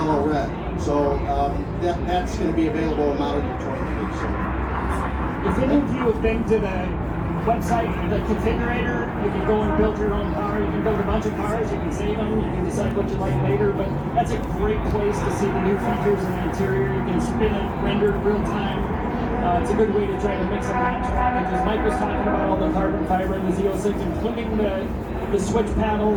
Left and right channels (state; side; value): identical; both; correlation 1.00